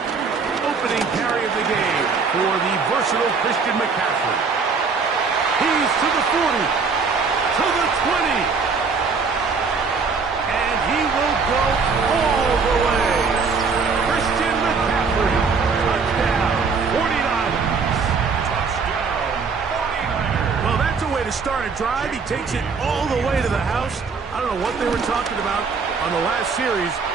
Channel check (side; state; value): left; quieter; 5.0 dB